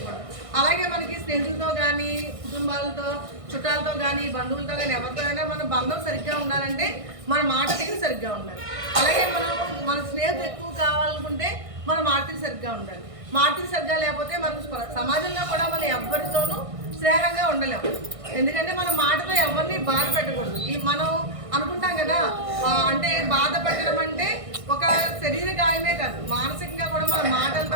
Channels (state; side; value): late; left; 1.6 ms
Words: అలాగే మనకి స్నేహితులతో కానీ, కుటుంబాలతో, చుట్టాలతో కానీ, బంధువులతో కానీ ఎవరితో అయినా మన బంధం సరిగ్గా ఉండాలంటే మన మాట తీరు సరిగ్గా ఉండాలి. అలాగే మన స్నేహితులు ఎక్కువ కావాలనుకుంటే మన మాట తీరు సరిగ్గా ఉండాలి. మాట తీరు సరిగ్గా లేకపోతే మనకు సమాజంలో కూడా మనం ఎవరితోనూ స్నేహంగా ఉండలేము. ఎందుకంటే మన మాటతో ఎవరిని బాధ పెట్టకూడదు. మనం అనుకుంటాం కదా, అంటే బాధ పెట్టడం అంటే ఒక శరీర గాయమే కాదు, మానసికంగా కూడా మన